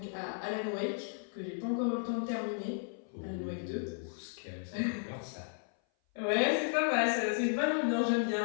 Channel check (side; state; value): right; silent; 55 dB below the other